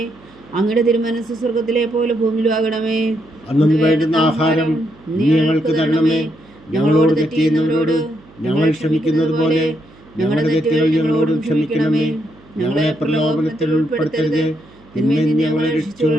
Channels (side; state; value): right; noise; hum, 26 dB below the sound